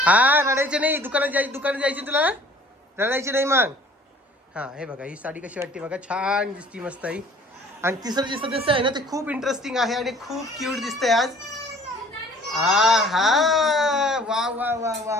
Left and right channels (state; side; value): normal; both; correlation 0.53